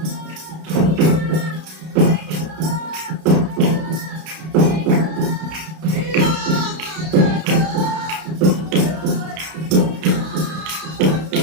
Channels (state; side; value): late; left; 32 ms